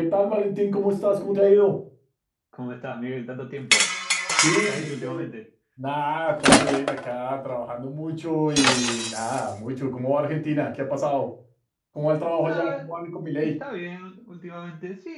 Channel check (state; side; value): identical; both; correlation 1.00